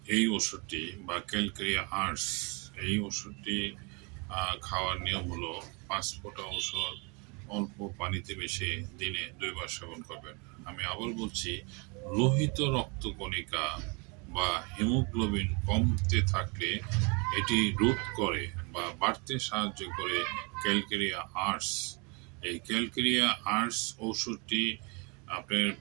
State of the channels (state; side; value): quieter; left; 31.4 dB